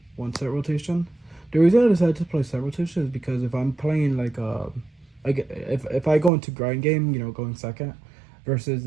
1 Set Rotation. The reason I decided to play Set Rotation is because if I'm playing like if I go into grind game, you know, going second, versus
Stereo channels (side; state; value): left; drops out; at 6.3 s